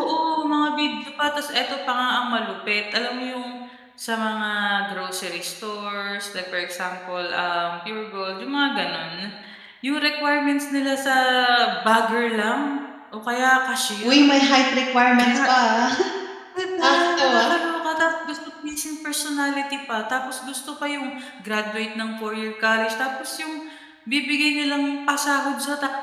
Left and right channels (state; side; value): identical; both; correlation 1.00